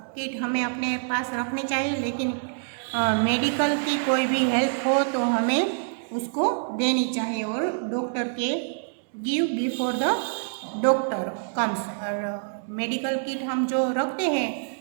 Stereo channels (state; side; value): silent; left; digital silence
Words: किट हमें अपने पास रखनी चाहिए, लेकिन मेडिकल की कोई भी हेल्प हो तो हमें उसको देनी चाहिए और डॉक्टर के give before the doctor comes. और मेडिकल किट हम जो रखते हैं